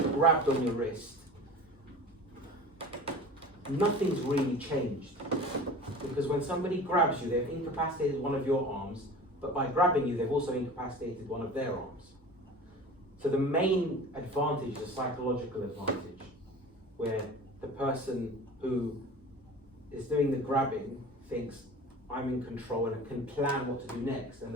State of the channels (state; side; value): normal; both; correlation 0.38